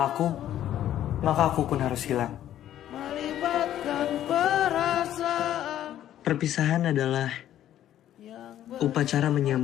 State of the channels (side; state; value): right; quieter; 11.8 dB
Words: aku, maka aku pun harus hilang. melibatkan perasaan Perpisahan adalah upacara